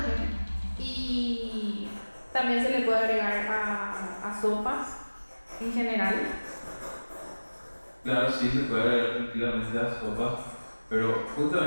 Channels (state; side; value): inverted; both; correlation -1.00